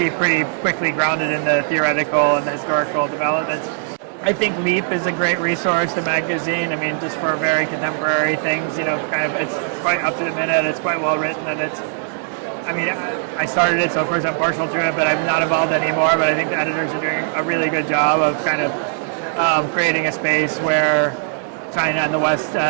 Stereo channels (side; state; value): left; silent; digital silence